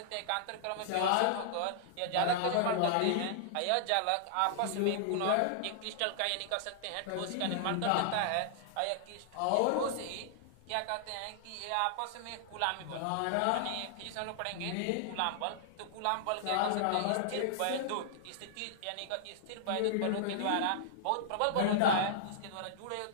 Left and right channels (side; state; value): both; different; correlation -0.01